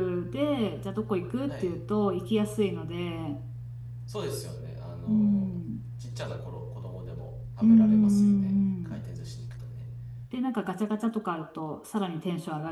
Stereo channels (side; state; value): both; identical; correlation 1.00